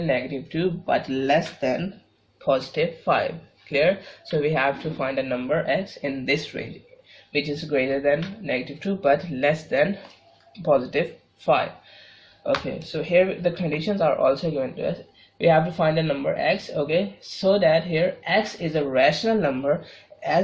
-2 but less than +5. Clear? So we have to find a number x in this range, which is greater than -2 but less than +5. Okay, so here the conditions are also given to us. We have to find a number x, okay, so that here x is a rational number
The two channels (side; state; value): both; identical; correlation 1.00